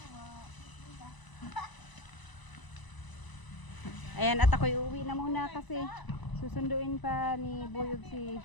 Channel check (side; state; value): right; late; 1.0 ms